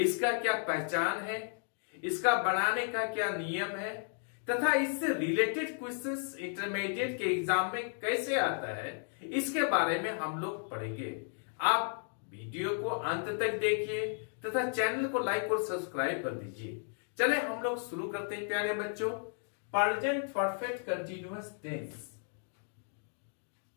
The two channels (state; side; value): silent; right; 55 dB below the other